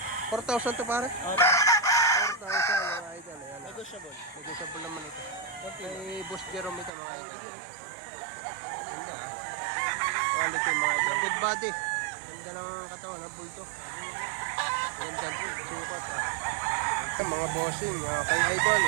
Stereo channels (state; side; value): drops out; left; at 6.9 s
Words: 4,000 to pare? 4,000 mga idol. Ayan Negotiable. Negotiable naman ito. May Boss Jerome ito mga idol. Ganda quality mga idol. Good body. Ganda ng katawan ha, bulldog. Ganda po, sukat Ito mga bossing, kay idol